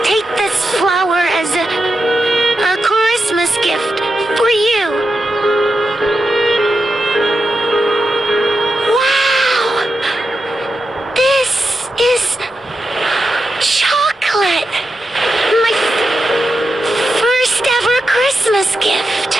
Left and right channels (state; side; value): normal; both; correlation 0.88